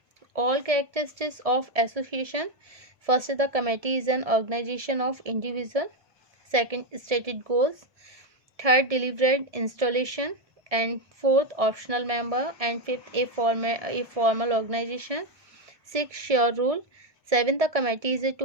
all characteristics of association. First, the committee is an organisation of individual. Second, stated goals. Third, delivered installation. And fourth, optional member. And fifth, a formal organisation. Six, sure rule. Seven, the committee is a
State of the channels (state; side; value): late; left; 1.7 ms